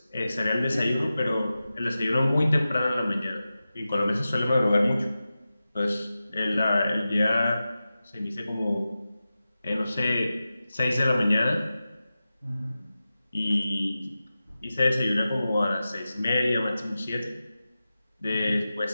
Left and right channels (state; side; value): inverted; both; correlation -0.94